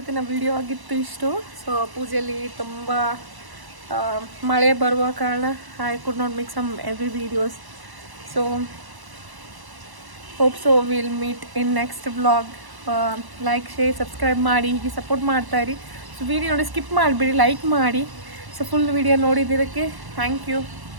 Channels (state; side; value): late; left; 1.0 ms